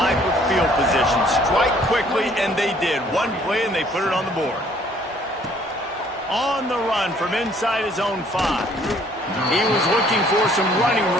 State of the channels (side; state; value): both; normal; correlation 0.60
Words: of field position. Strike quickly, and they did. One play, and they put it on the board. On the run from inside his own 5. He was looking for some running